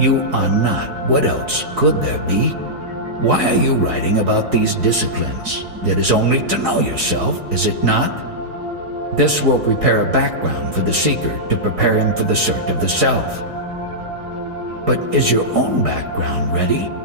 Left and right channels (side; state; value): left; late; 4.7 ms